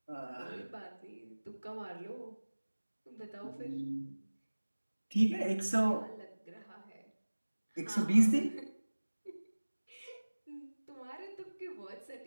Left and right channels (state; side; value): inverted; both; correlation -1.00